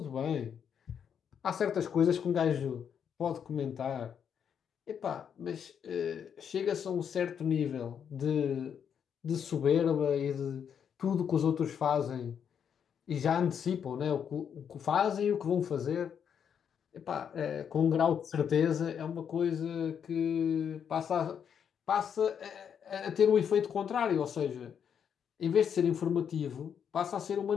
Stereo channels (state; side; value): quieter; right; 7.9 dB